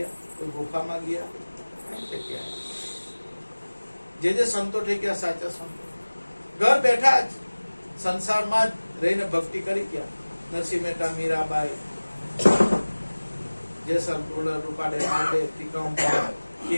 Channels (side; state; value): both; inverted; correlation -1.00